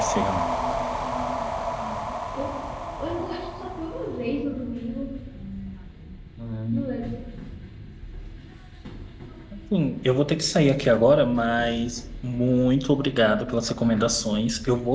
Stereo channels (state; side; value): identical; both; correlation 1.00